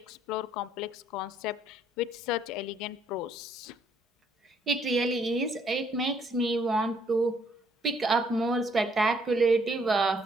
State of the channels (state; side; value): normal; both; correlation 0.66